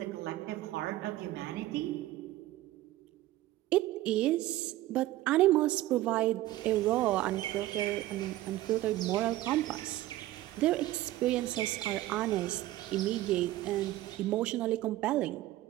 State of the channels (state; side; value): quieter; left; 15.8 dB